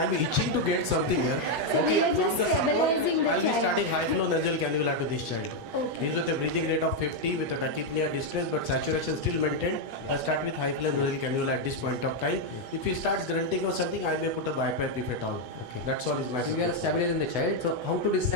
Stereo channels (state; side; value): late; left; 8.1 ms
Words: am itching to get something here. So we are from just the support, stabilizing the I'll be child. starting high flow nasal cannula to this child. Okay. He's with a breathing rate of 50 with a tachypnea distress, but saturation still maintained. I'll start with high flow nasal cannula at this point of time. If he starts grunting or something, I may put a bipipe if at all. Okay. That's all is my So we are stabilizing the child. So how to